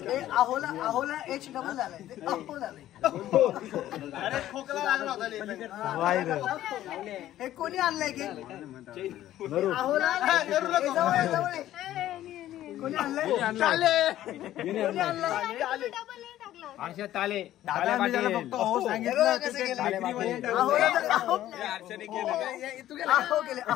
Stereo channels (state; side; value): quieter; right; 13.3 dB